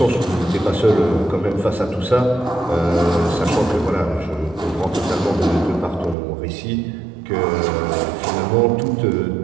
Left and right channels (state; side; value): drops out; left; at 6.2 s